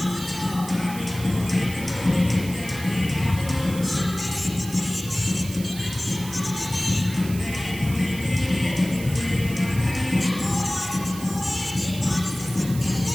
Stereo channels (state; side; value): noise; right; hiss, 13 dB below the sound